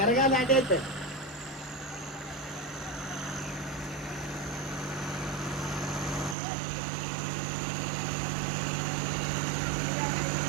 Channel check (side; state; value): left; drops out; at 6.4 s